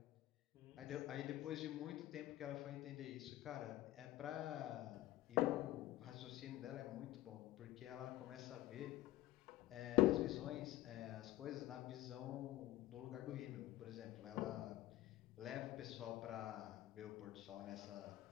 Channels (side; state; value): right; quieter; 15.9 dB